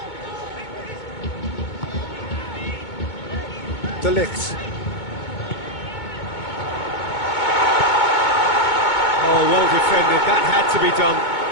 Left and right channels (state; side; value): late; right; 2.2 ms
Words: De Ligt. Oh, well defended. That had to be done.